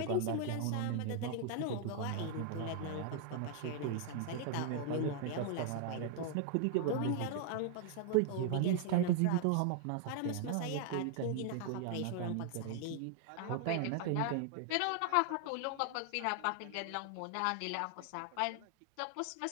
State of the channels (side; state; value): both; different; correlation 0.00